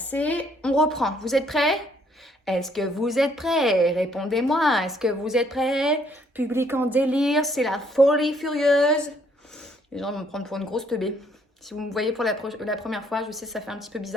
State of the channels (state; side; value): normal; both; correlation 0.66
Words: on reprend. Vous êtes prêts? Est-ce que vous êtes prêts? Répondez-moi. Est-ce que vous êtes prêts? Public en délire, c'est la folie furieuse. Les gens vont me prendre pour une grosse teubée. Si vous me voyez pour la première fois, je sais, ça fait un petit peu